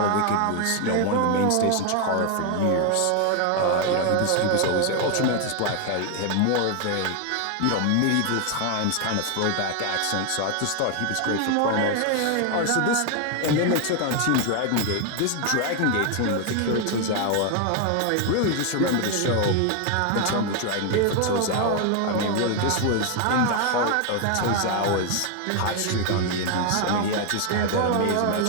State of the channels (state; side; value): different; both; correlation 0.01